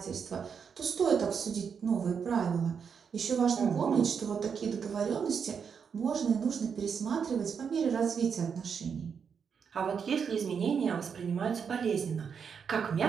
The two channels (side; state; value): left; quieter; 6.6 dB